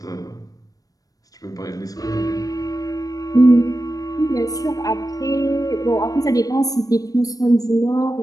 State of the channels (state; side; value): late; right; 0.18 ms